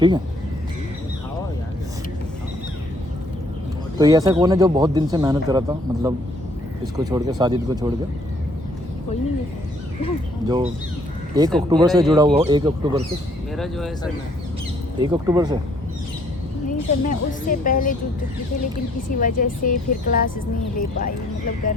है। तो ये ऐसा कौन है जो बहुत दिन से मेहनत कर रहा था, मतलब इसको छोड़ के, साजिद को छोड़ के, कोई नहीं है जो 1 अक्टूबर से जुड़ा हुआ हो? 1 अक्टूबर से, मेरा जो है सर 1 अक्टूबर से नहीं सर, मैं उससे पहले जुड़ चुकी थी, लेकिन किसी वजह से फिर क्लासेस नहीं ले पाई। मतलब घर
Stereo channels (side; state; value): both; normal; correlation 0.64